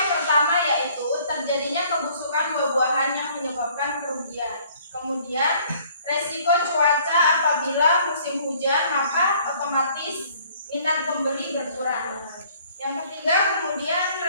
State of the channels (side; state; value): both; inverted; correlation -0.58